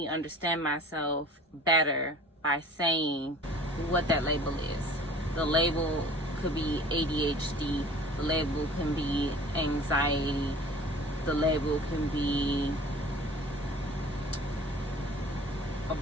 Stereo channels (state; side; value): normal; both; correlation 0.46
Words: understand myself better by saying what that label is. The label could be ADHD. The label can be anxiety. The label can be a